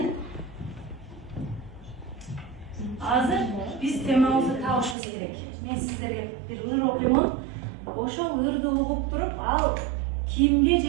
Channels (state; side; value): drops out; left; at 5.0 s